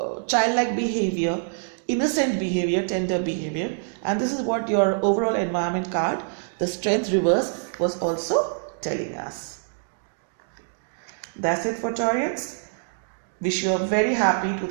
childlike behavior, innocent behavior, tender behavior. And this is what your overall environment card, the Strength reverse, was also telling us. That's it for Taurians. Wish you a very happy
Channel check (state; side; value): silent; left; digital silence